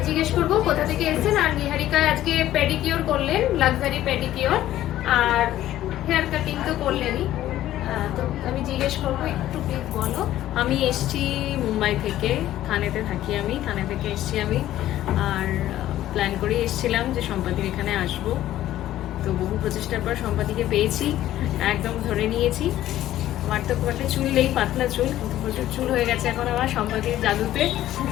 জিজ্ঞেস করবো কোথা থেকে এসেছেন। আর নিহারিকা আজকে পেডিকিওর করলেন, লাক্সারি পেডিকিওর, আর হেয়ার কাটিং তো করলেনই। তো আমি জিজ্ঞেস করবো, একটু প্লিজ বলো। আমি এসছি মুম্বাই থেকে, থানেতে থাকি আমি, থানে থেকে এসছি আমি। আর প্ল্যান করে এসছিলাম যে সম্পাদির এখানে আসবো। তো বহু প্রচেষ্টার পর সম্পাদিকে পেয়েছি, একদম ধরে নিয়েছি। আমার তো খুব একটা চুল নেই, পাতলা চুল, কিন্তু প্রচুর চুল হয়ে গেছে এখন আমার সম্পাদির জাদুতে।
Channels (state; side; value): quieter; right; 13.5 dB